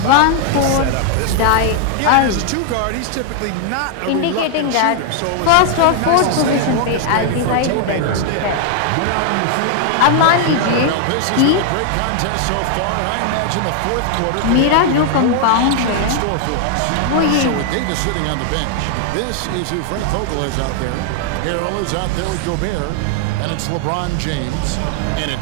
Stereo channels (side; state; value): both; different; correlation 0.00